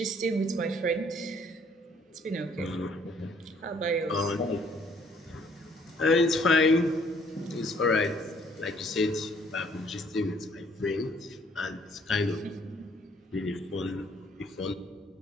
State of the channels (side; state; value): both; normal; correlation 0.63